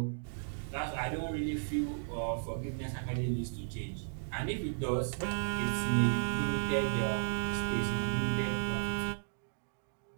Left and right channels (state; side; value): silent; left; digital silence